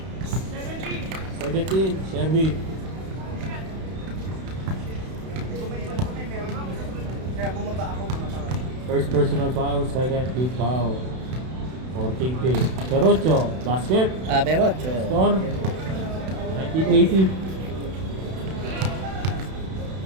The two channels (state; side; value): late; left; 32 ms